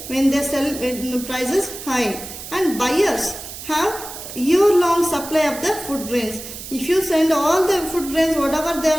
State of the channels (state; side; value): noise; right; hiss, 11 dB below the sound